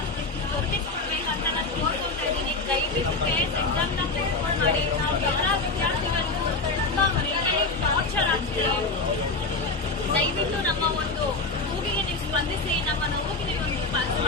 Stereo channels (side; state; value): right; quieter; 3.5 dB